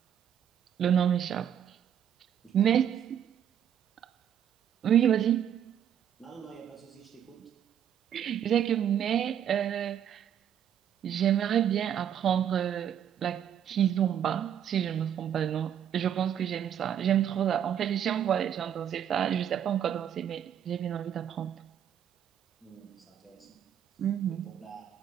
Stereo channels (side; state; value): left; quieter; 9.4 dB